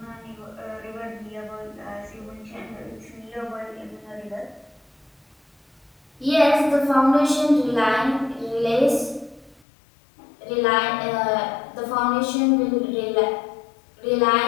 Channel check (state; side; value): drops out; right; at 9.6 s